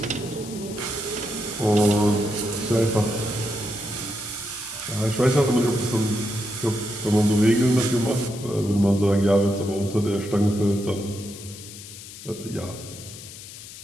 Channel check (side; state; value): left; noise; hiss, 14 dB below the sound